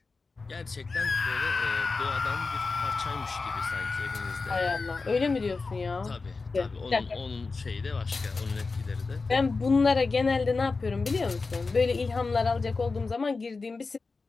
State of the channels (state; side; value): quieter; right; 4.1 dB